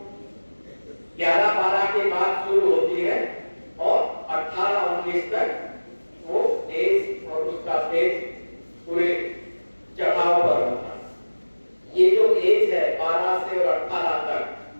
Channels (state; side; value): inverted; both; correlation -1.00